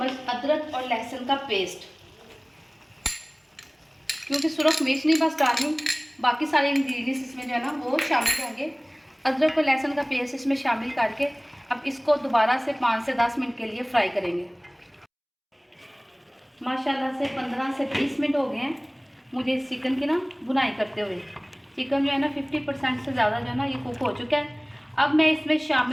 अदरक और लहसुन का पेस्ट। क्योंकि सुरख मिर्च नहीं बस डालनी, बाकी सारे इंग्रेडिएंट्स इसमें जो है ना वो शामिल होंगे। अदरक और लहसुन का पेस्ट इसमें शामिल करके अब इसको दोबारा से 5 से 10 मिनट के लिए फ्राई करेंगे। माशाल्लाह से 15 से 20 मिनट हो गए हैं मुझे इस चिकन की ना बुनाई करते हुए। चिकन जो है ना 50% से ज़्यादा जो है ना ये कुक हो चुका है। अब मैं इसमें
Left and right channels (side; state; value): both; identical; correlation 1.00